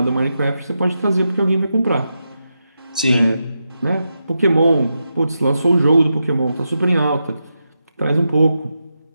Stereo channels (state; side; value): inverted; both; correlation -0.88